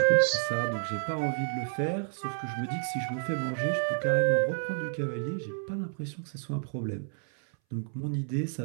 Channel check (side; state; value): left; silent; 58 dB below the other